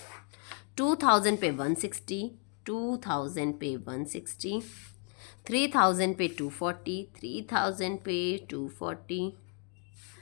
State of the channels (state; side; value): quieter; right; 38.7 dB